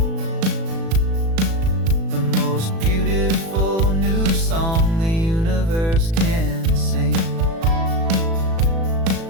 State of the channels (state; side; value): late; left; 36 ms